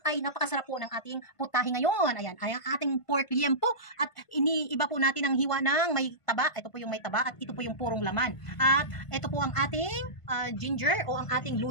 ay napakasarap po ng ating putahe ngayon. Ayan, ay ang ating pork liempo. At iniiba po natin ang hiwa ng may taba. Ito po yung may taba at ito po yung purong laman. At ito po ang ating ginger o ang ating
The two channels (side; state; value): right; late; 1.5 ms